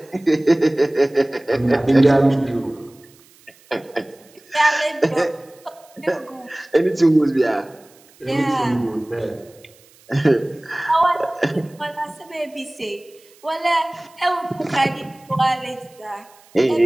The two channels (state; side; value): noise; right; hiss, 28 dB below the sound